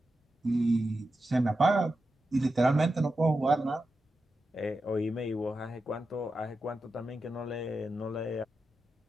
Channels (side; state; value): both; normal; correlation 0.90